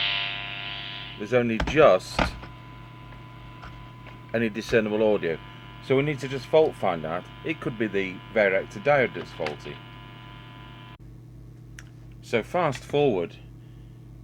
There's only just any discernible audio, so we need to just fault find out. It could be the varactor diode that's faulty. So fast forward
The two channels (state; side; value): identical; both; correlation 1.00